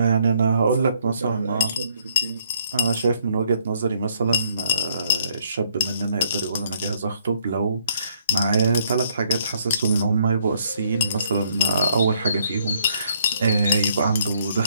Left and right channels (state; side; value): inverted; both; correlation -0.67